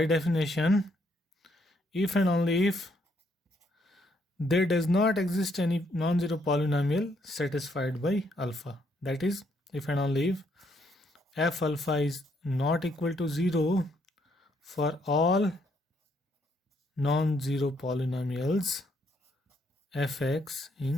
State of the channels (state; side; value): normal; both; correlation 0.72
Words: definition if and only if there does not exist any non-zero polynomial satisfied by alpha. That is, if and only if f alpha is not equal to 0 for all non-zero polynomials fx